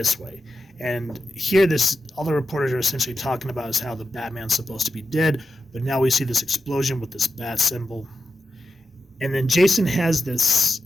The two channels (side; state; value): both; normal; correlation 0.90